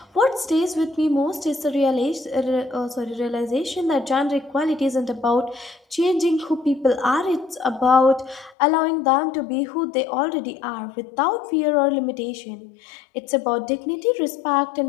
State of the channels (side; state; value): right; drops out; at 8.6 s